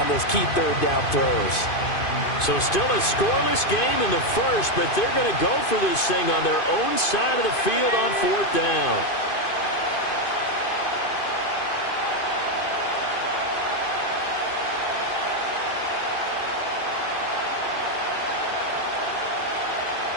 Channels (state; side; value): late; right; 2.5 ms